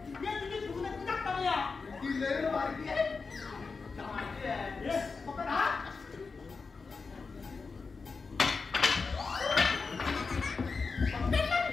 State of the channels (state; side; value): quieter; right; 4.6 dB